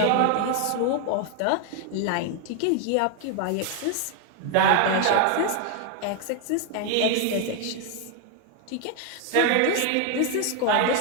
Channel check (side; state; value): both; different; correlation 0.01